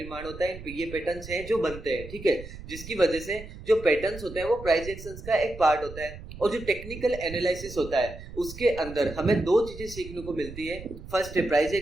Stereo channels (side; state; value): right; noise; rumble, 13 dB below the sound